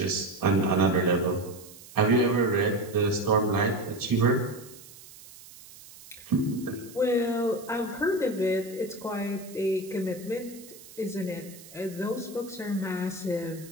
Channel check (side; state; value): right; noise; hiss, 19 dB below the sound